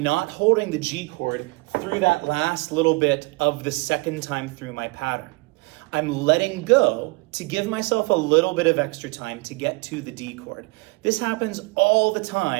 not holding the G chord through that last little bit of the second time through my pattern. I'm letting go to give myself a little bit of extra time to get to the D chord. This happens all the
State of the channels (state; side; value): quieter; left; 26.3 dB